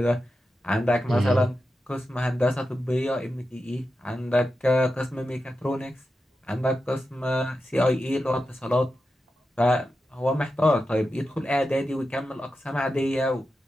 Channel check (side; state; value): both; normal; correlation 0.90